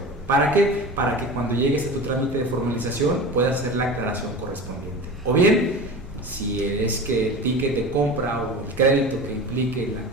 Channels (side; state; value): both; normal; correlation 0.32